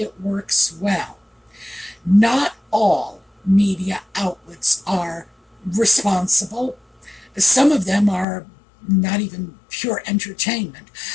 works well. Not all media outlets are responsible. Some of them are not even pure entertainment.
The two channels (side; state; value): right; drops out; at 8.2 s